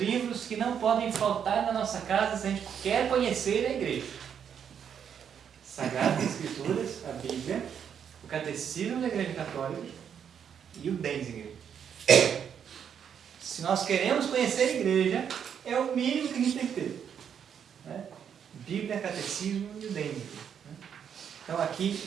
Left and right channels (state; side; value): quieter; left; 8.1 dB